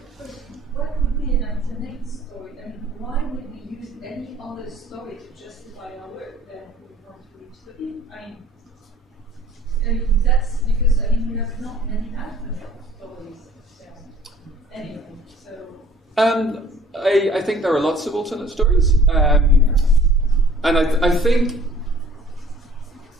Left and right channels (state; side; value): normal; both; correlation 0.53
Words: What would be an alternate story? I mean, why would we use any other story to justify our work than we want to reach the people? I mean, that's because, we have not many alternate stories. Anyway, so... I think there are lots of alternate stories. And I think,